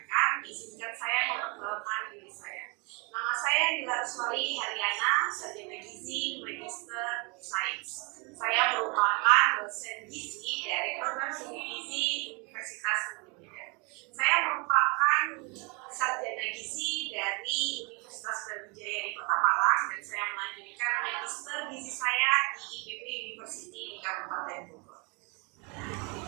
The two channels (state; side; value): quieter; left; 30.7 dB